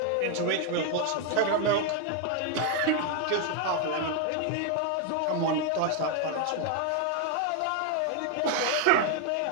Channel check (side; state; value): both; different; correlation 0.01